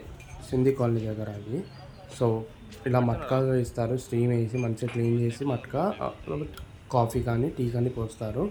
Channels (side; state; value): both; identical; correlation 1.00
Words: సింధీ కాలనీ దగ్గర అది. సో ఇలా మట్కా ఇస్తారు. స్టీమ్ వేసి మంచిగా క్లీన్ చేసి మట్కా కాఫీ కానీ టీ కానీ పోస్తారు.